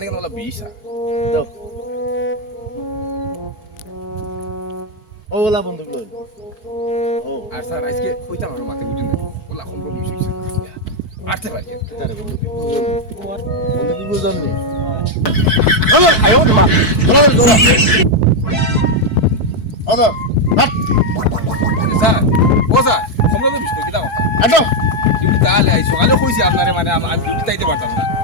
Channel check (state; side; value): late; right; 4.6 ms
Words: কেন বলা 20 দাও ওলা বন্ধু লই ও আর স্যার আজকে কইতাম আমার মাথায় উঠে না বলা কোন রকম হইছে আটতে পারি তারে বন্ধু কি বুঝল বন্ধু কি বুঝল নি আয়ো মা ওলা ওলা আদা হাট স্যার ও স্যার তোমরা তো বিস্কুট দিতা কথা আটো ডিউটি তাহলে আই সকালে কইছি আপনারে মানে আমি ডিউটি তাইতে পারতাম না